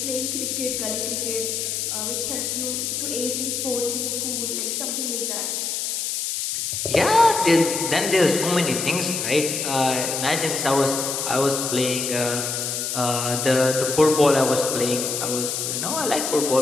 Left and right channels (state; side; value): noise; left; hiss, 2 dB below the sound